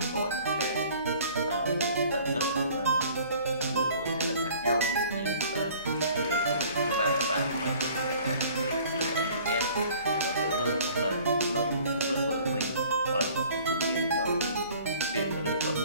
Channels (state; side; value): inverted; both; correlation -0.51